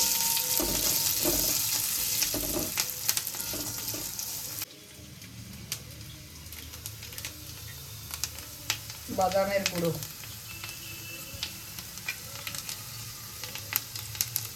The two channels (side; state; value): both; identical; correlation 1.00